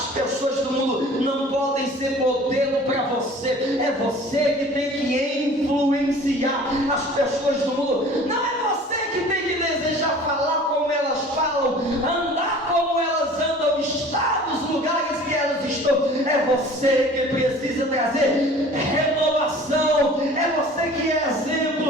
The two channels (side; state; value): both; normal; correlation 0.46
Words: pessoas do mundo não podem ser modelo para você. É você que tem que influenciar as pessoas do mundo. Não é você que tem que desejar falar como elas falam, andar como elas andam, estar nos lugares que elas estão. É você que precisa trazer renovação. É você que é